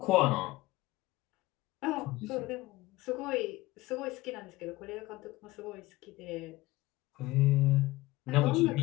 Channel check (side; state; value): right; quieter; 19.1 dB